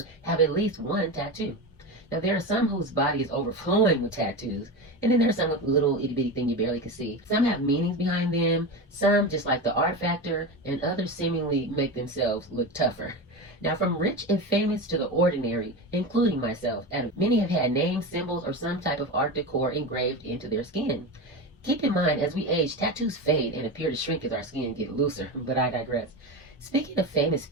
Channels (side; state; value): both; normal; correlation 0.22